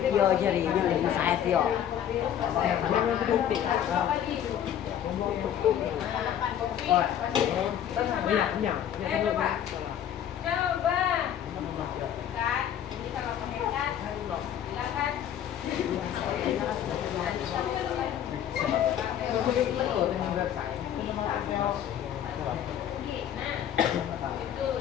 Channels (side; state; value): right; quieter; 10.1 dB